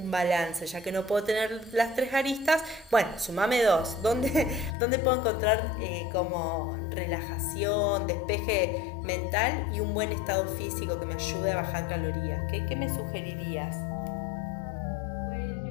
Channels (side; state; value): right; drops out; at 4.8 s